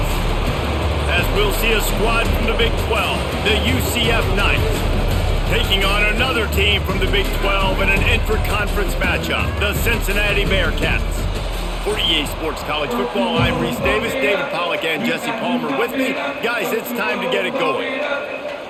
As we'll see a squad from the Big 12, the UCF Knights, taking on another team from the Big 12 in an intra-conference matchup, the Cincinnati Bearcats. For EA Sports College Football, I'm Reese Davis, David Pollack, and Jesse Palmer with me. Guys, it's time to get it going.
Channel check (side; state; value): both; identical; correlation 1.00